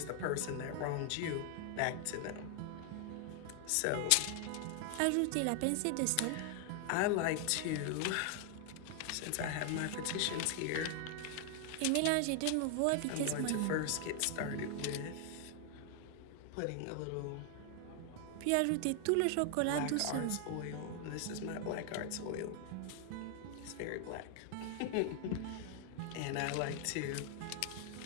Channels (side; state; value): both; different; correlation 0.00